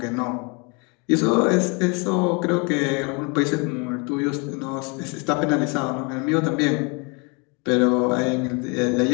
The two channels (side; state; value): right; quieter; 31.8 dB